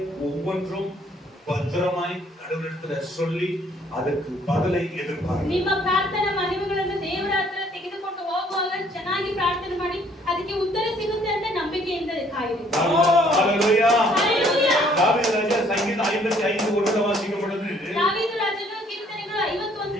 ஒவ்வொன்றும் பத்திரமாய் கடவுளிடத்துல சொல்லி ಅದಕ್ಕೆ பதிலை எதிர்பார்க்க. ನಿಮ್ಮ ಪ್ರಾರ್ಥನಾ ಮನವಿಗಳನ್ನು ದೇವರ ಹತ್ರ ತೆಗೆದುಕೊಂಡು ಹೋಗುವಾಗ ಚೆನ್ನಾಗಿ ಪ್ರಾರ್ಥನೆ ಮಾಡಿ ಅದಕ್ಕೆ ಉತ್ತರ ಸಿಗುತ್ತೆ ಅಂತ ನಂಬಿಕೆಯಿಂದ ಕಾಯಿರಿ. ஹalleluya. ஹalleluya. தாவீது ராஜா சங்கீதம் 55 ஒன்றை வாசிக்கும் பொழுது தாவீது ರಾಜನು ಕೀರ್ತನೆಗಳು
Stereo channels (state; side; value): normal; both; correlation 0.62